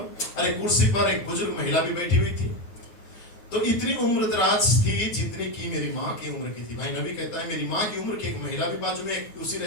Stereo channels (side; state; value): right; late; 9.5 ms